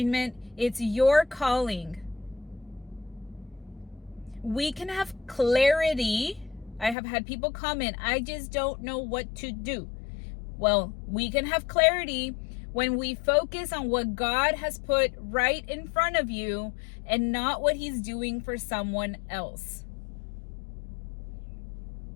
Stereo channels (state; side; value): drops out; right; at 7.0 s